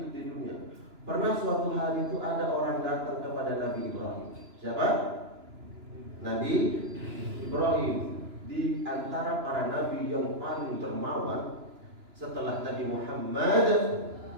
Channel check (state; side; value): late; left; 2.9 ms